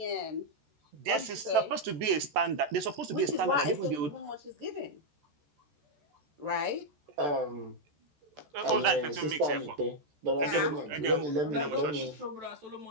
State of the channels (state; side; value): late; left; 14 ms